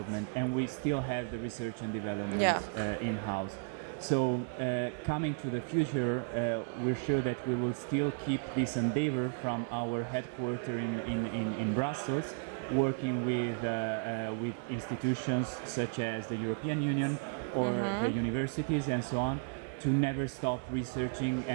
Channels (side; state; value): left; quieter; 38.2 dB